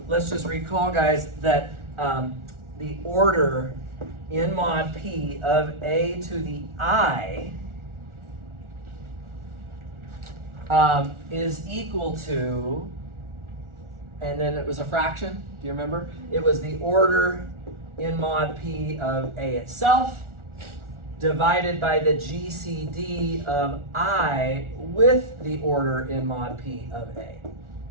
guys, that the order in mod P of a to the I is equal to, and then it was a fraction, do you remember? It was the order in mod P of A itself divided by the GCD of I with the order in mod P of A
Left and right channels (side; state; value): left; late; 1.4 ms